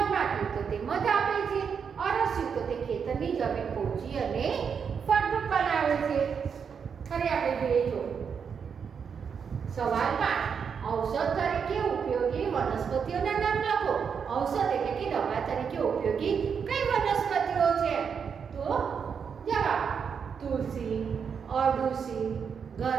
તો તે મધ આપે છે. અળસિયું તો તે ખેતરની જમીન પોચી અને ફળદ્રુપ બનાવે છે. હવે આપણે જોઈએ જો સવાલ 5, ઔષધ તરીકે ઉપયોગી વનસ્પતિઓના નામ લખો. ઔષધ એટલે કે દવા તરીકે ઉપયોગી કઈ વનસ્પતિઓ છે? તો જવાબ તુલસી, અરડુસી,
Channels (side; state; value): left; quieter; 6.6 dB